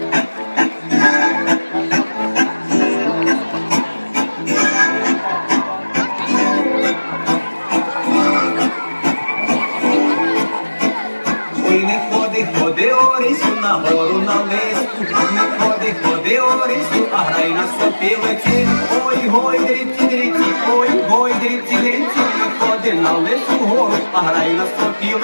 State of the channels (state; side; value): inverted; both; correlation -1.00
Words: Ходи, Орисю, на гору на листу, не ходи, Орисю, а грай на сопілиці. Ой, гой, дріці, ой, дріці, не ходи на лису гору, а грай на